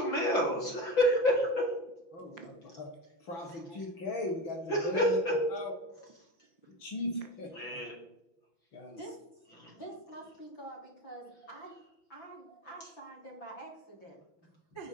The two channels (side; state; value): right; late; 6.0 ms